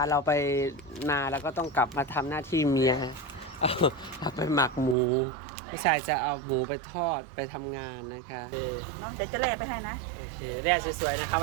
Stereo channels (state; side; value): drops out; left; at 5.0 s